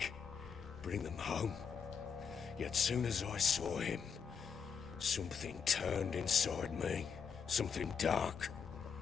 bring them home. Yet soon as I saw him, something turned inside me, something dark.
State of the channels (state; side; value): quieter; right; 6.4 dB